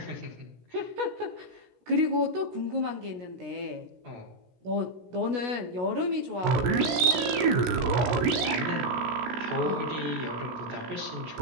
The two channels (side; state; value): left; late; 16 ms